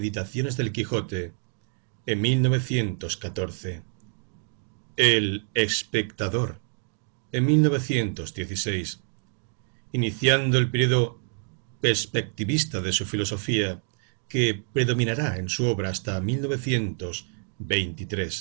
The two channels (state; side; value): silent; left; 60 dB below the other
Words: del Quijote, en 1914, El Espectador, en 1916, iniciando el periodo perspectivista de su filosofía, que predominará en su obra hasta